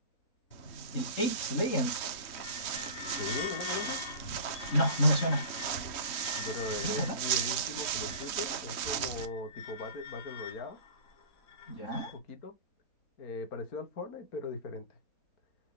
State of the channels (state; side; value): late; right; 3.2 ms